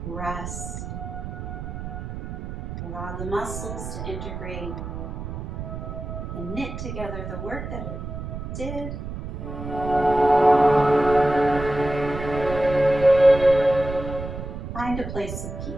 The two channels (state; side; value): noise; right; rumble, 8 dB below the sound